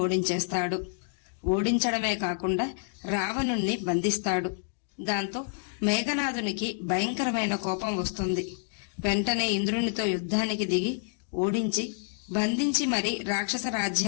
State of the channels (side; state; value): right; silent; digital silence